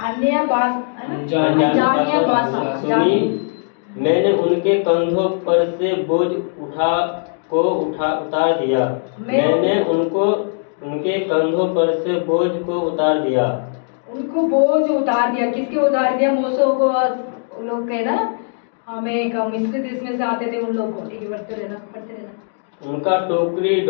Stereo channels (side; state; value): right; silent; 66 dB below the other